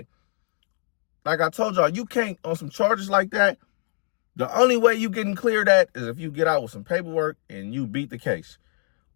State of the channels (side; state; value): right; silent; digital silence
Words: you can't, on some charges like that, the only way you getting cleared that is if you get out with some paperwork and you beat the case.